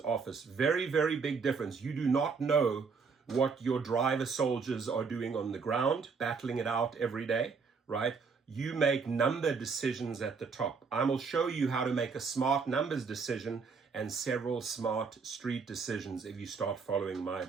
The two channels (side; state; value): left; quieter; 5.2 dB